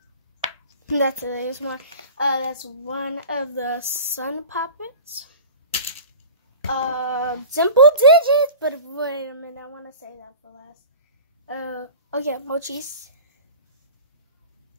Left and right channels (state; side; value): inverted; both; correlation -0.38